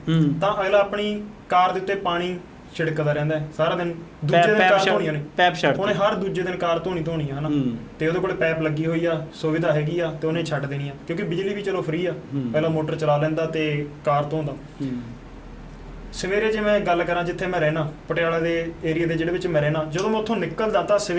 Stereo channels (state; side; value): identical; both; correlation 1.00